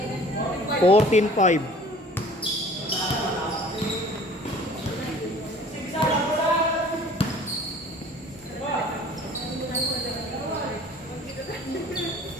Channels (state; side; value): normal; both; correlation 0.48